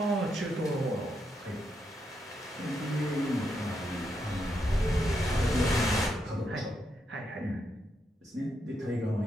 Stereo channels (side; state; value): both; normal; correlation 0.81